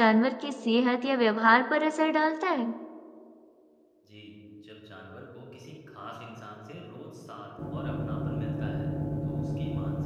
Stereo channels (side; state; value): both; identical; correlation 1.00